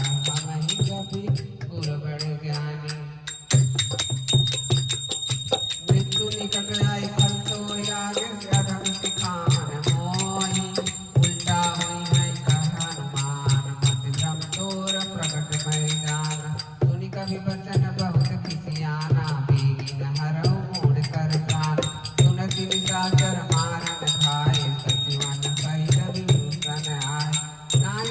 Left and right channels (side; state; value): both; identical; correlation 1.00